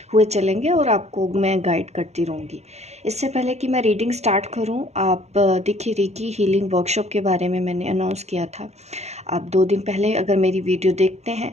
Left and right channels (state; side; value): late; left; 0.32 ms